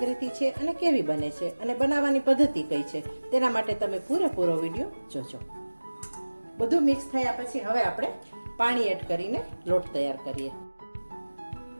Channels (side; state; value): both; inverted; correlation -1.00